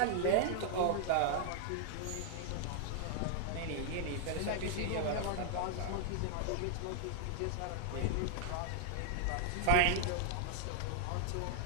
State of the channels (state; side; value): different; both; correlation 0.00